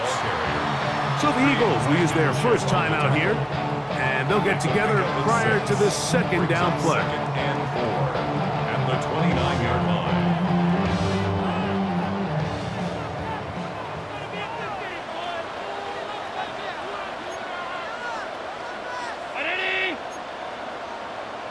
So the Eagles will use their first time out here. And they'll get together prior to this 2nd down play. 2nd and 4 at the 29-yard line.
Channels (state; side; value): identical; both; correlation 1.00